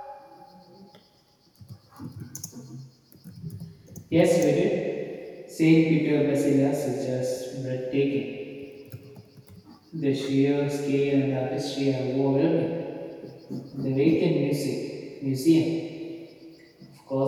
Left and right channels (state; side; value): identical; both; correlation 1.00